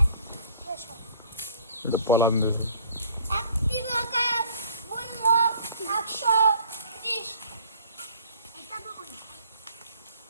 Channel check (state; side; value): inverted; both; correlation -0.54